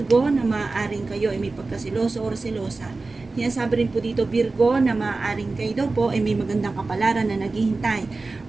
na maaaring kayo ay may pagkasiloso o selosa. Sinasabi rin po dito Virgo na maaaring kayo daw po ay may magandang kapalaran na naghihintay.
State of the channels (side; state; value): left; quieter; 3.6 dB